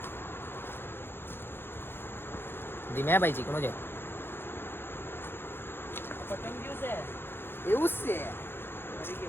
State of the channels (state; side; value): late; right; 0.10 ms